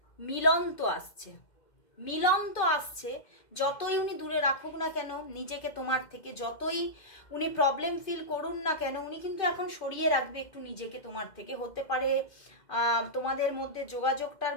মিলন তো আসছে। যতই উনি দূরে রাখুক না কেন নিজেকে তোমার থেকে, যতই উনি প্রবলেম ফিল করুন না কেন, উনি কিন্তু এখন সরিয়ে রাখবে একটু নিজেকে তোমার থেকে। হতে পারে তোমাদের মধ্যে যোগাযোগটার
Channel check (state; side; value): late; right; 2.1 ms